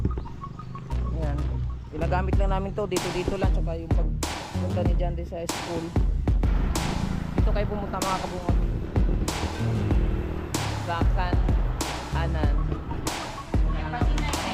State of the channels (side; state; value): both; identical; correlation 1.00